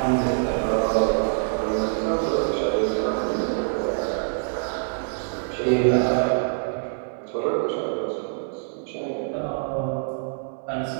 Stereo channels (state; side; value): silent; left; 62 dB below the other